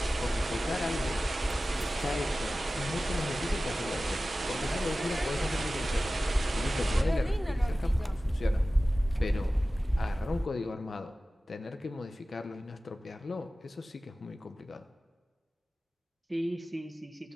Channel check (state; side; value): normal; both; correlation 0.96